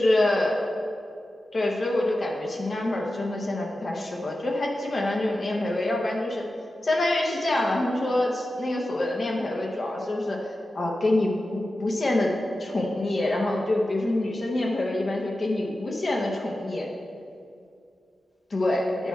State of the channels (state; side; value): normal; both; correlation 0.93